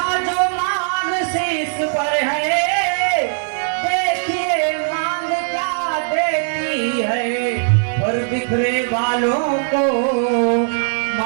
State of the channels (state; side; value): silent; left; digital silence